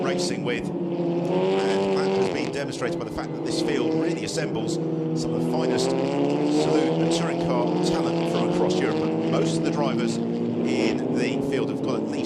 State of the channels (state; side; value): identical; both; correlation 1.00